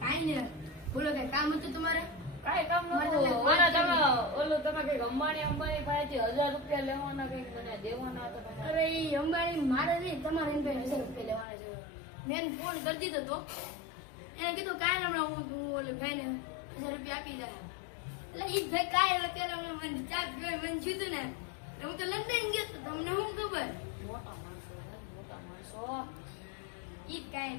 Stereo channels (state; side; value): drops out; right; at 11.5 s